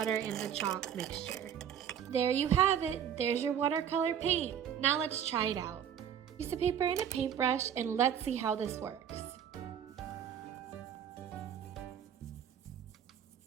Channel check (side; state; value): left; quieter; 9.0 dB